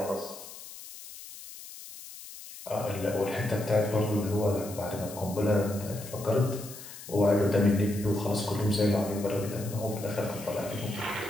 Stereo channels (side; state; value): left; noise; hiss, 14 dB below the sound